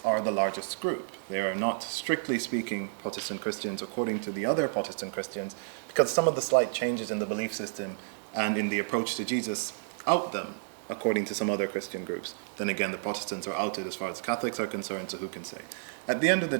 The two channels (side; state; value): left; silent; 57 dB below the other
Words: are the largest group. They are not, strictly speaking, Protestant Christians according to the other Protestant Christians, because some of the slight changes in the belief system and in the approach to Jesus out them, according to some other Christian groups. Then again, the Protestants are outed as far as Catholics are concerned, so who can say? At the end of the